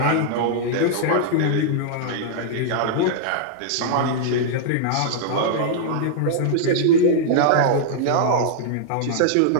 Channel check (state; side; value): different; both; correlation -0.01